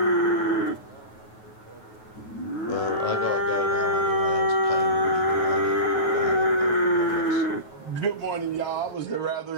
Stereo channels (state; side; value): late; right; 9.3 ms